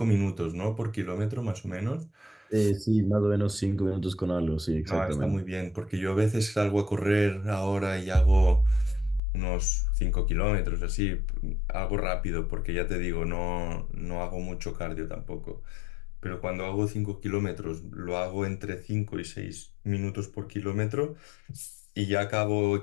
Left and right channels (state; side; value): drops out; right; at 9.2 s